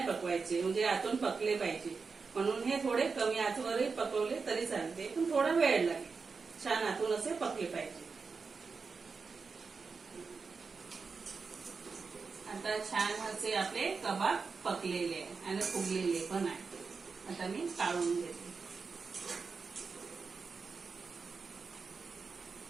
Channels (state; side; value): quieter; left; 4.9 dB